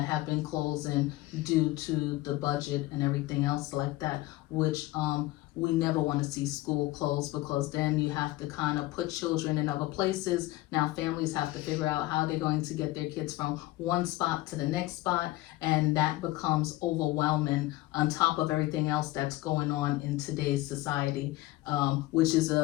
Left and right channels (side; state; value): right; quieter; 18.1 dB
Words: have been closing due to the budget and everything else like that, which we never want to see school close, because then you have to kind of put children in other places. Now families have to figure out how they're going to get their kids from one spot to the next spot, and that becomes overwhelming on top of everything else that's going on in today's society, which is